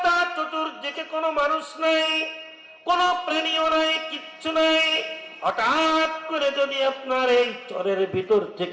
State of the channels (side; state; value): both; identical; correlation 1.00